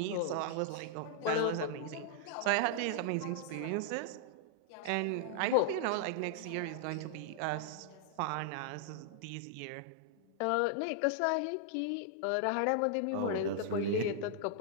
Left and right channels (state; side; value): different; both; correlation 0.00